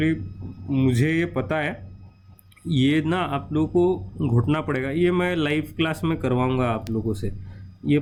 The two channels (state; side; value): identical; both; correlation 1.00